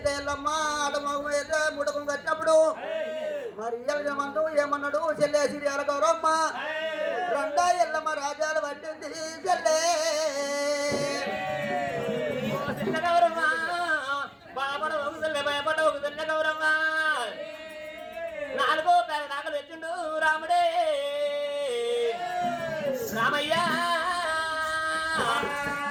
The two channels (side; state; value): both; identical; correlation 1.00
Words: ఎల్లమ్మ ఆటమగు ముడకం కట్టినప్పుడు మరి ఏమంటూ ఏమన్నాడు చెల్లె సిరియాల గౌరమ్మ రెండా ఎల్లమ్మ రాజాలు పట్టింది చెల్లె గౌరమ్మ బాబడ ఒకసారి భయపడ ఒకసారి గౌరమ్మ నాలుగో పేదలు తెచ్చిండు రాముడే రామయ్య